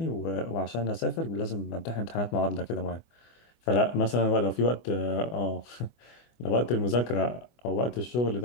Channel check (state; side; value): late; right; 24 ms